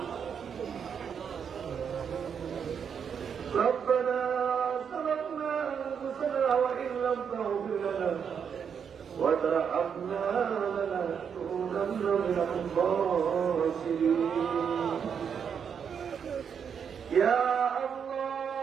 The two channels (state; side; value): quieter; left; 7.2 dB